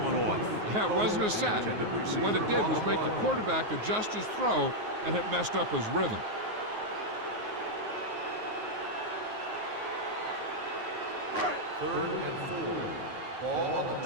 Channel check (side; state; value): left; late; 9.5 ms